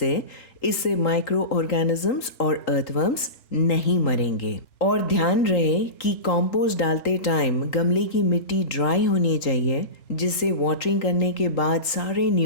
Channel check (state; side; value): late; right; 3.8 ms